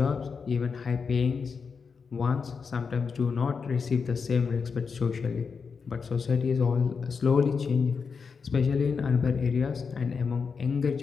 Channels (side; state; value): right; quieter; 5.5 dB